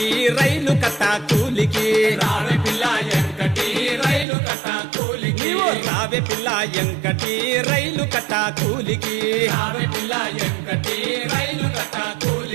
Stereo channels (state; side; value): drops out; left; at 4.2 s